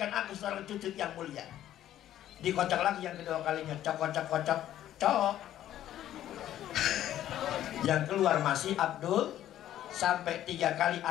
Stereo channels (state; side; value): quieter; right; 12.2 dB